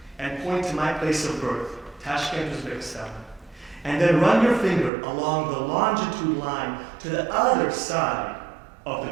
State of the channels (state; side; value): drops out; left; at 4.9 s